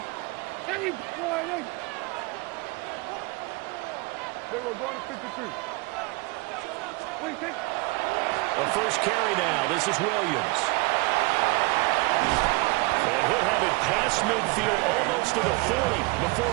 Hey, boy, they were going to 53. What do you think? A first carry now. This is Williams. And he'll have it past midfield almost to the 40 before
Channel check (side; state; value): left; quieter; 25.1 dB